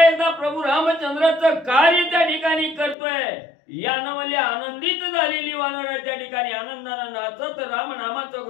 एकदा प्रभू रामचंद्राचं कार्य त्या ठिकाणी करतोय. यानं म्हणजे आनंदित झालेली वानर त्या ठिकाणी आनंदानं नाचत रामनामाचं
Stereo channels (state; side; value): drops out; right; at 3.0 s